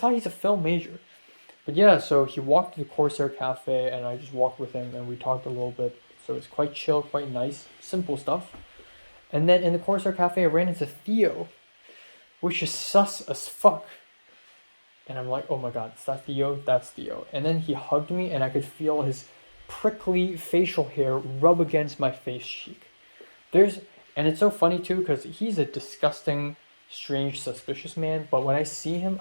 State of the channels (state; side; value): inverted; both; correlation -1.00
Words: he's a film major. But yeah, so he walked to the Corsair Cafe, and I just walked with him, and we talked a little bit. So it's quite chill, quite nice, simple stuff. And then in the Corsair Cafe, I ran into Theo, which is sus as fuck. And I'm like, oh my god, is that Theo? That's Theo. And then he hugged me, and I could feel his prickly facial hair rub against my face cheek. And it's so funny too, because he's a disgusting, strange, suspicious man, but when I see him,